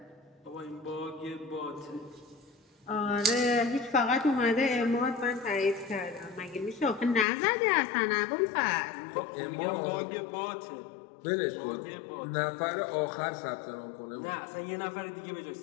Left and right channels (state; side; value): drops out; right; at 7.2 s